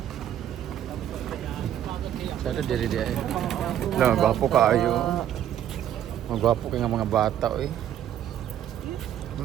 Sada diri di ay. Hala, magwapo ka ayo. Magwapo ka nga mga bata, eh.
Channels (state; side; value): quieter; left; 10.8 dB